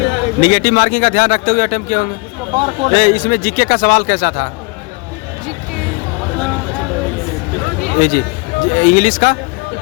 ही। निगेटिव मार्किंग का ध्यान रखते हुए अटेम्प्ट किए होंगे। इसमें जीके का सवाल कैसा था? जीके ये जी। इंग्लिश का?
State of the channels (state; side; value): quieter; right; 29.0 dB